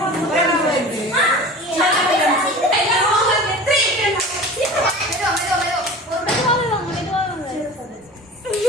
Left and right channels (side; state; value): both; normal; correlation 0.38